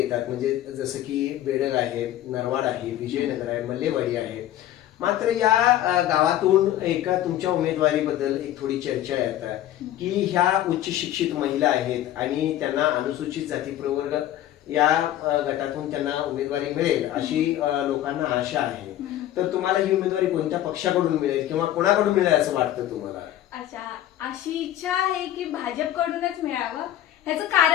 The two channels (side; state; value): right; quieter; 12.8 dB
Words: म्हणजे जसं की बेडग आहे, नरवाड आहे, विजयनगर आहे, मल्लेवाडी आहे, मात्र या गावातून एका तुमच्या उमेदवारीबद्दल एक थोडी चर्चा येतात की ह्या उच्च शिक्षित महिला आहेत आणि त्यांना अनुसूचित जाती प्रवर्ग या गटातून त्यांना उमेदवारी मिळेल अशी लोकांना आशा आहे। तर तुम्हाला ही उमेदवारी कोणत्या पक्षाकडून मिळेल किंवा कोणाकडून मिळेल असं वाटतं तुम्हाला? अच्छा, अशी इच्छा आहे की भाजपकडूनच मिळावं, ह्याचं